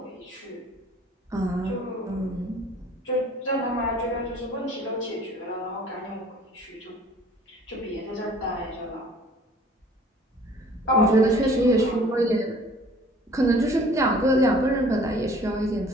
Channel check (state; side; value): normal; both; correlation 0.52